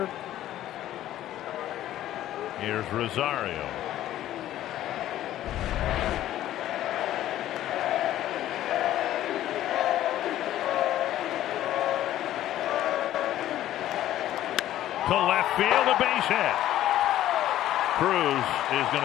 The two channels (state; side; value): quieter; right; 13.1 dB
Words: Here's Rosario. To left field, a base hit. Cruz is going